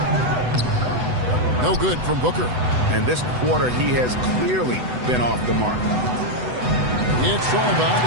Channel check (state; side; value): late; left; 8.0 ms